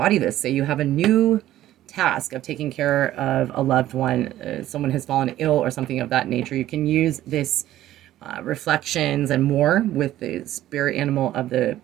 this, say you have a new task of taking care of a loved one, someone has fallen ill or something of that nature, you can use this reflections and more with the spirit animal of the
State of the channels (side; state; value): left; quieter; 13.8 dB